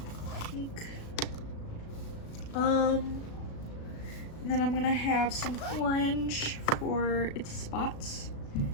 Pink. And then I'm gonna have some orange for its spots,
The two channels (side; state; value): right; late; 36 ms